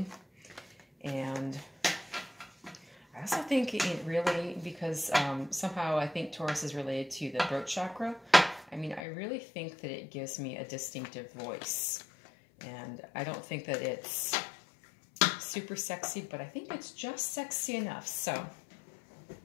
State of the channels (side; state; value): right; drops out; at 9.0 s